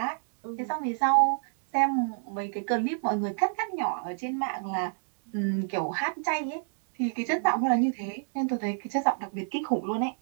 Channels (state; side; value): silent; left; digital silence